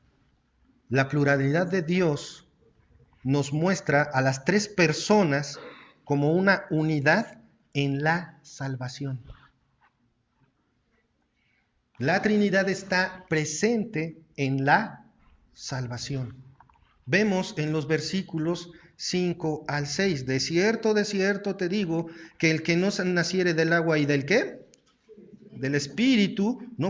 la pluralidad de Dios nos muestra a las tres personas como una unidad en la salvación. La Trinidad está presente en la salvación. Vemos en los versículos 5 al 6, de cierto te digo, que el que no naciere del agua y del ¿qué? Del Espíritu,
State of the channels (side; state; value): both; identical; correlation 1.00